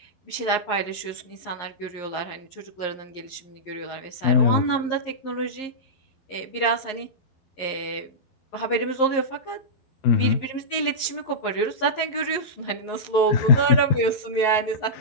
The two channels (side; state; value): right; late; 11 ms